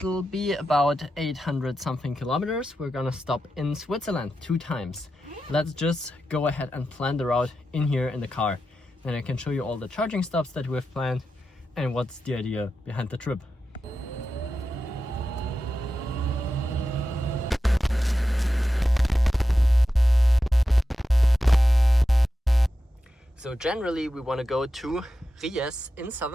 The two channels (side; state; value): both; normal; correlation 0.90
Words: be about 800 something kilometers. We're gonna stop in Switzerland 2 times. Let's just go ahead and plan the route in here in the car. Then I can show you all the charging stops that we've planned and what's the idea behind the trip. So generally we want to go to Ries in